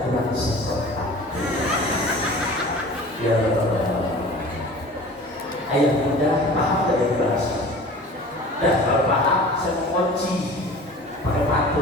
kurang seperti ya ayah muda paham dari bahasa. Dan kalau paham saya mau kunci pakai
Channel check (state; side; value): normal; both; correlation 0.41